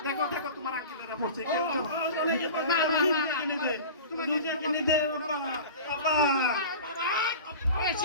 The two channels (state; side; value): inverted; both; correlation -0.36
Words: দেখো দেখো তোমার আঙ্কেলেরা পড়ছে, কেউ তো না না না, কিনে দে, লুজিয়া কিনে দে। বাবা,